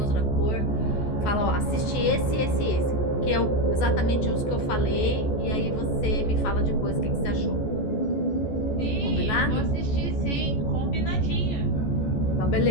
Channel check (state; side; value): late; right; 14 ms